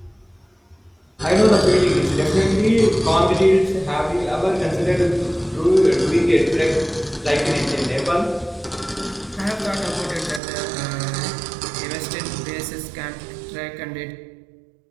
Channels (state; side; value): drops out; left; at 10.4 s